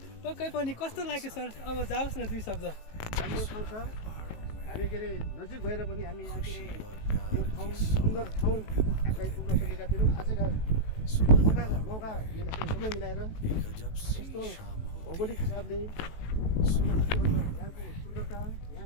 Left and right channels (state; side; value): late; right; 19 ms